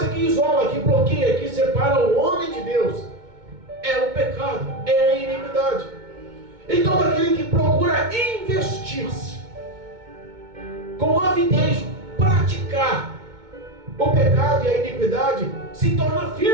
que isola, que bloqueia, que separa o homem de Deus é o pecado, é a iniquidade. E todo aquele que procura investir-se com avidez, praticar o pecado e a iniquidade, se torna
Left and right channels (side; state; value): left; late; 2.2 ms